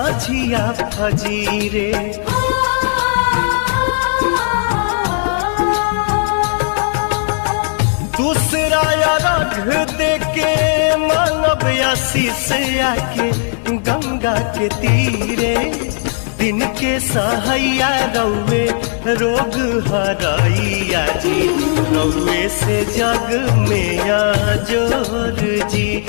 फजीरे दूसरा रघ देके मानव आशीष आके गंगा के तीरे दिन के सहैया रौवे रोग हरैया जी रौवे से जग में जोर जी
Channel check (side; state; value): right; silent; digital silence